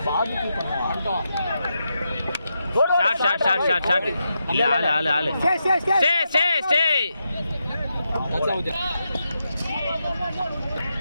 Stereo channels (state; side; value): inverted; both; correlation -0.85